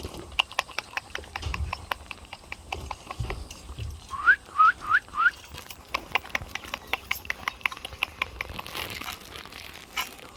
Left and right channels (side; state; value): both; identical; correlation 1.00